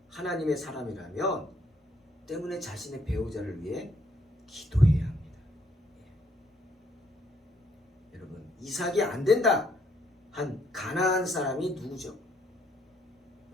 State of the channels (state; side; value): normal; both; correlation 0.69